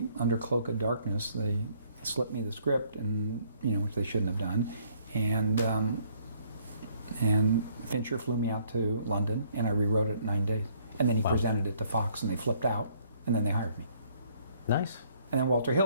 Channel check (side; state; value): both; inverted; correlation -0.64